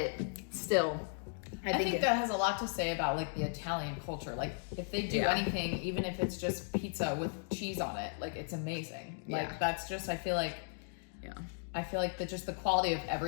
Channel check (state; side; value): silent; right; digital silence